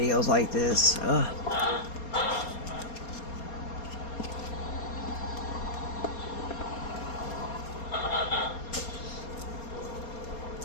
like this. Ugh.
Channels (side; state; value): right; late; 4.3 ms